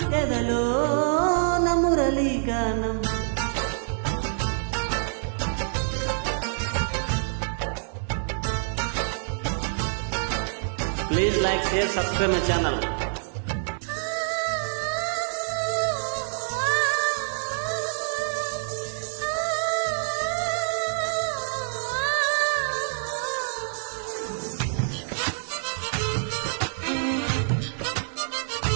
ఎదలో మురళీ గానం. Please like, share, subscribe my channel.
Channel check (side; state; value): left; silent; digital silence